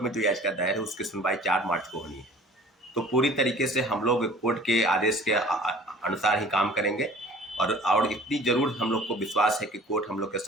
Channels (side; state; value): both; normal; correlation 0.47